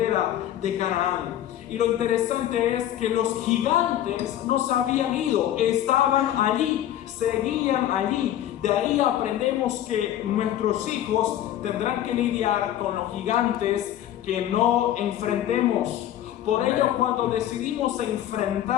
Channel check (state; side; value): quieter; right; 12.1 dB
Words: de Canaán. Y lo interesante es que los gigantes no se habían ido, estaban allí, seguían allí. De ahí aprendemos que nuestros hijos tendrán que lidiar con los gigantes que no enfrentemos. Por ello, cuando decidimos